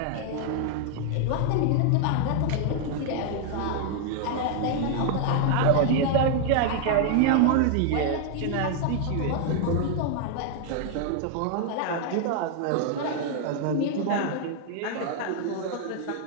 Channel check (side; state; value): both; different; correlation 0.00